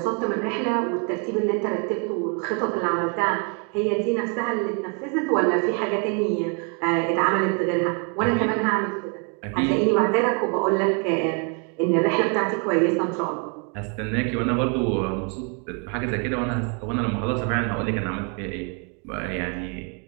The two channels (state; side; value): quieter; left; 37.7 dB